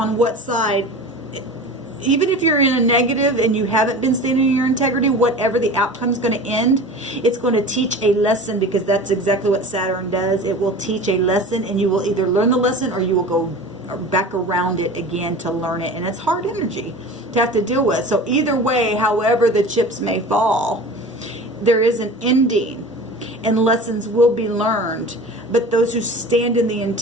what side. Even if you're in a negative and you haven't been standing in your integrity, whatever the outcome is going to end, it's going to teach a lesson, because that's exactly what Saturn does. It will teach a lesson, and you will either learn the lesson or you will go back around it again to learn it. And it's hard energy to have to deal with. So either way, however the chips may fall, there is an ending and lessons will be learned. But those who stand in the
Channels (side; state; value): both; normal; correlation 0.36